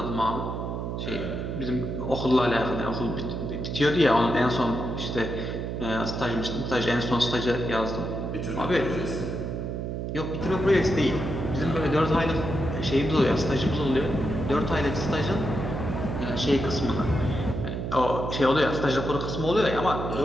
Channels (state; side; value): noise; right; hum, 4 dB below the sound